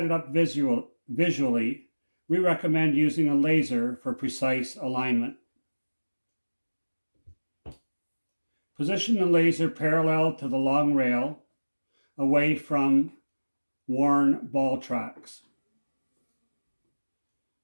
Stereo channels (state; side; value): inverted; both; correlation -1.00